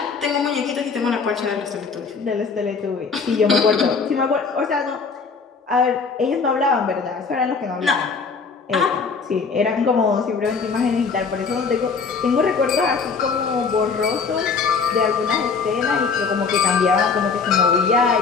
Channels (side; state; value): right; quieter; 5.1 dB